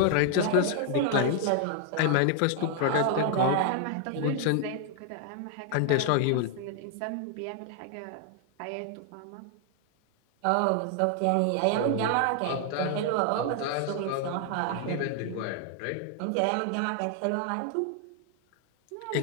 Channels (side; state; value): both; different; correlation 0.00